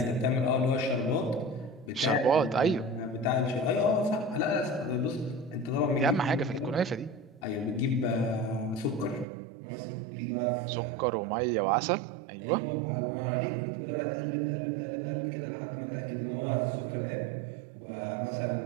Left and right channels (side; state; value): left; drops out; at 9.2 s